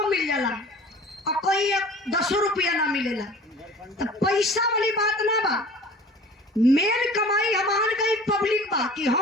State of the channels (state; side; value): normal; both; correlation 0.44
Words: मिल जाला और कहीं 10 रुपया ना मिलेला। तो पैसा वाली बात ना बा, मेन कमाई हमार कहीं पब्लिक बा कि